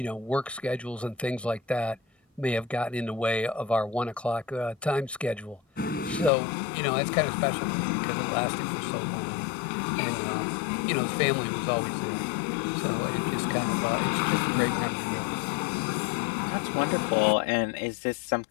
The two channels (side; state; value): right; drops out; at 6.3 s